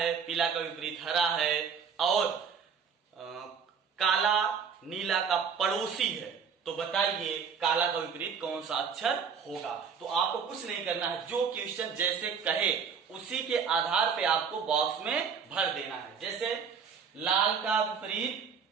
पीला का विपरीत हरा है और काला नीला का पड़ोसी है, तो बताइए काला का विपरीत कौन सा अक्षर होगा। तो आपको कुछ नहीं करना है, जो क्वेश्चन जैसे कहे उसी के आधार पे आपको बॉक्स में भर देना है। जैसे लाल का विपरीत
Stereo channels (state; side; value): quieter; left; 6.4 dB